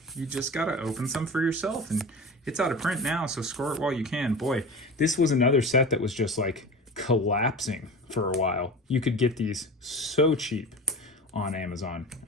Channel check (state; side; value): normal; both; correlation 0.32